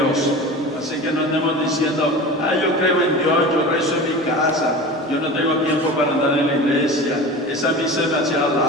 Así que no andemos diciendo, yo creo en Dios, yo rezo en mi casa, yo no tengo tiempo para andar en la iglesia, esa misa es demasiado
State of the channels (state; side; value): normal; both; correlation 0.33